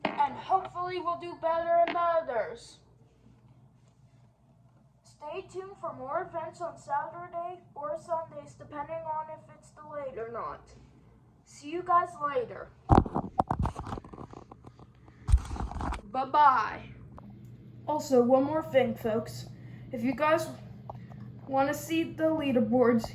And hopefully we'll do better in the others. Stay tuned for more events on Saturday or Sundays, depending on if it's delayed or not. See you guys later. Bye-bye. Also, one more thing, folks. If you guys want to see the leaderboards,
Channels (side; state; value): both; identical; correlation 1.00